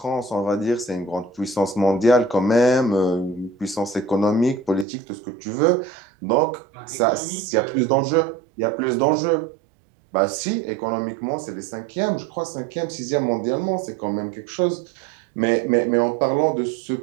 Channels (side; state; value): left; drops out; at 4.9 s